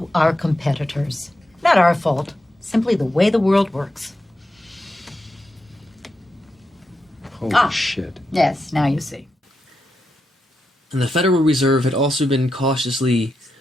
our competitors. Not our fault, simply the way the world works. Holy shit. Yes, now you see. And the Federal Reserve had also been cautiously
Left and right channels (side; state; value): both; normal; correlation 0.87